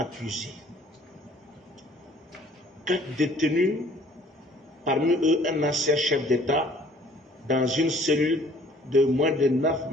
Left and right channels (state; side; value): normal; both; correlation 0.56